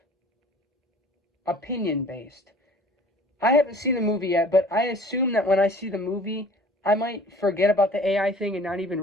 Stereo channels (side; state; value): both; normal; correlation 0.49